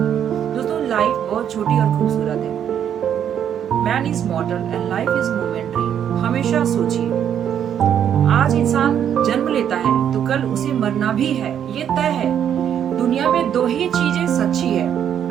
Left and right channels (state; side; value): quieter; left; 9.2 dB